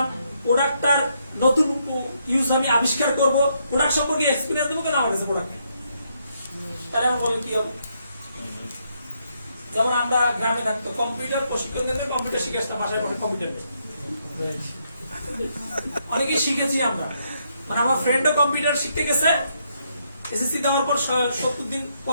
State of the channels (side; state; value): both; inverted; correlation -0.76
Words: প্রোডাক্টটার নতুন ইউজ আমি আবিষ্কার করব, প্রোডাক্ট সম্পর্কে এক্সপিরিয়েন্স দেবো, কেন আমার কাছে প্রোডাক্ট নেই। তাহলে আমি বলি কি হবে? যেমন আমরা গ্রামে থাকতো, কম্পিউটার প্রশিক্ষণ কেন্দ্রে কম্পিউটার শিখে আসতাম, বাসায় বসে কম্পিউটার অনেকেই শিখেছি আমরা। মানে আমার ফ্রেন্ডও কম্পিউটার শিখতে গেছে, এসএসসি দেওয়ার পর 70 দিন